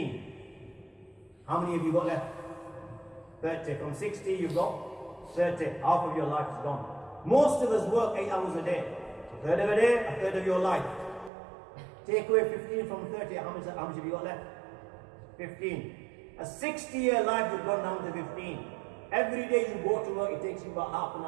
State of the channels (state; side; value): drops out; left; at 11.3 s